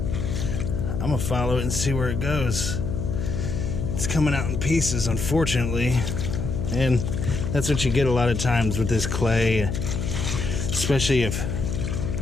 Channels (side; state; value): left; noise; hum, 2 dB below the sound